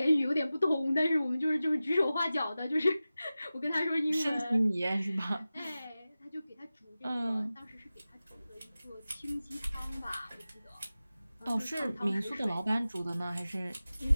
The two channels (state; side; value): inverted; both; correlation -0.95